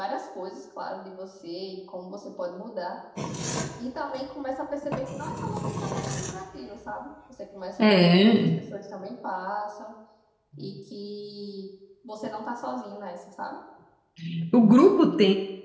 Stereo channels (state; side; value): identical; both; correlation 1.00